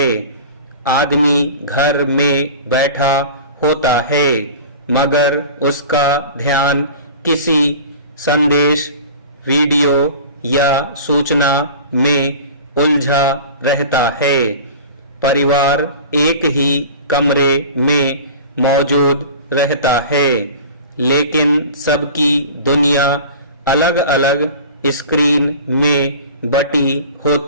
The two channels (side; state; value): both; inverted; correlation -0.38